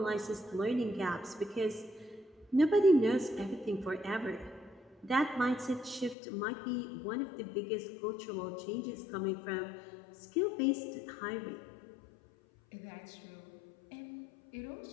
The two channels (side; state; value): right; drops out; at 6.2 s